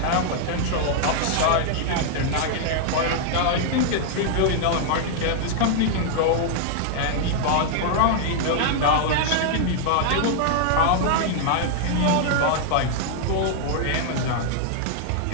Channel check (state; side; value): different; both; correlation 0.00